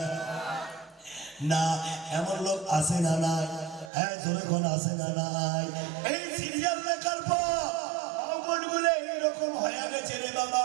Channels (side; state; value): left; drops out; at 3.9 s